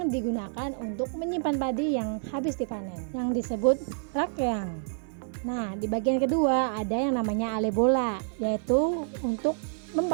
digunakan untuk menyimpan padi yang habis dipanen, yang disebut rakyang. Nah, di bagian kedua ada yang namanya ale bola, yaitu untuk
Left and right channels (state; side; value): silent; left; 59 dB below the other